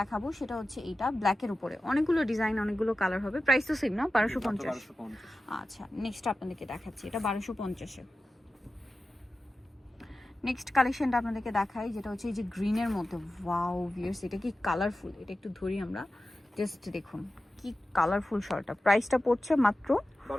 দেখাবো সেটা হচ্ছে এইটা ব্ল্যাকের উপরে, অনেকগুলো ডিজাইন, অনেকগুলো কালার হবে। প্রাইস তো সেম না? 1250। আচ্ছা, নেক্সট আপনাদেরকে দেখাচ্ছি, এটা 1250-এ। নেক্সট কালেকশনটা আপনাদেরকে দেখাই, যেটা হচ্ছে এই যে গ্রিনের মধ্যে। ওয়াও ভিউয়ার্স, এটা কি কালারফুল, এটা একটু ধরি আমরা, জাস্ট দেখুন কি কালারফুল শলটা। প্রাইসটা পড়ছে মাত্র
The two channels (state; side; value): normal; both; correlation 0.94